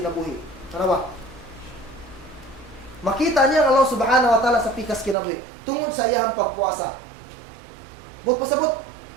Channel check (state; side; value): drops out; left; at 5.2 s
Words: Ano ba? Makita niya ang Allah subhanahu wa ta'ala sa pikas kinabuhi tungod sa iyahang pagpuasa. But pasabot,